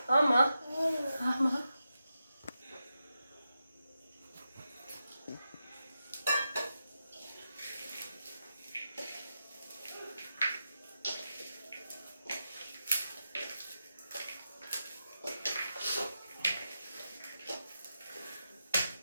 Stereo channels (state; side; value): inverted; both; correlation -0.88